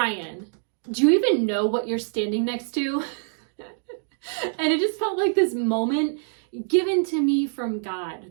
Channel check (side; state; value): left; silent; digital silence